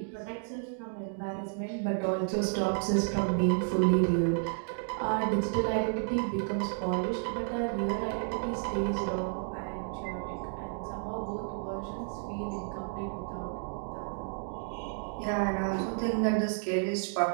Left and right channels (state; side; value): silent; left; 55 dB below the other